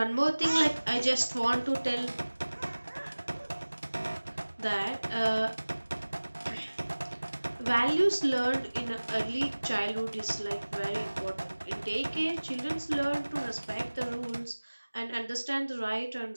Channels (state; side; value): inverted; both; correlation -1.00